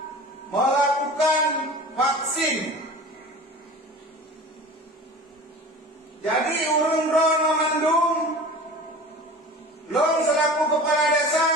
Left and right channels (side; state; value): both; normal; correlation 0.38